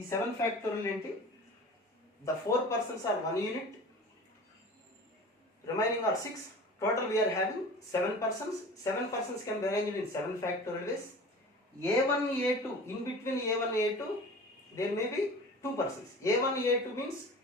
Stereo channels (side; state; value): both; normal; correlation 0.39